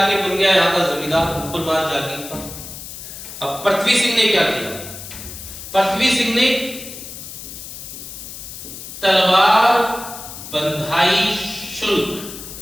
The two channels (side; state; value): left; noise; hiss, 12 dB below the sound